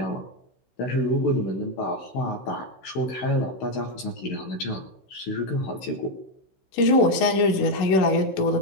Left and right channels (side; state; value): right; late; 16 ms